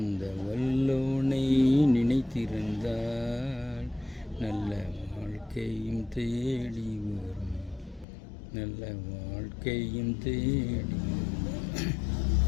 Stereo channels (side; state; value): right; drops out; at 8.1 s